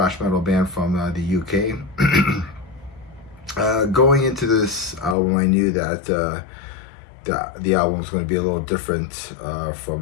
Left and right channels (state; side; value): drops out; right; at 5.2 s